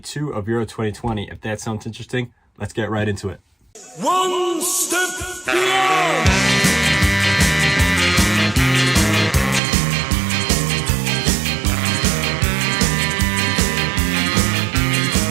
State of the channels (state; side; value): drops out; left; at 9.6 s